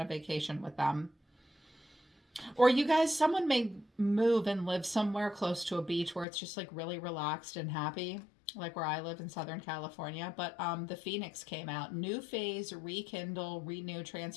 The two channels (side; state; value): right; drops out; at 6.2 s